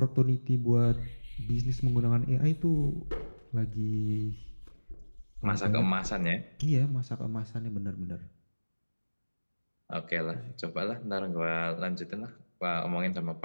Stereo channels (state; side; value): inverted; both; correlation -1.00